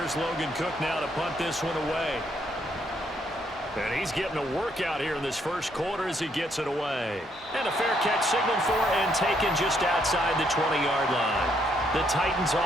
Logan Cook now to punt this one away. And he's getting a workout here in this first quarter as he gets it away. And a fair catch signaled for and taken just outside the 20-yard line. The Titans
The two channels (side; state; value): both; normal; correlation 0.72